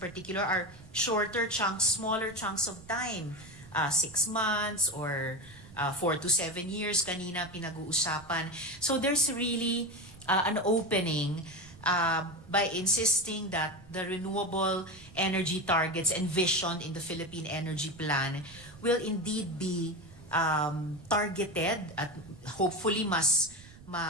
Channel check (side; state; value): right; noise; rumble, 20 dB below the sound